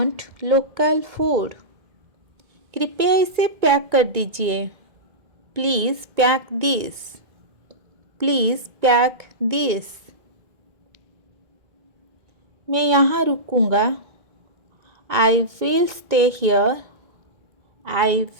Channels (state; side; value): late; left; 2.2 ms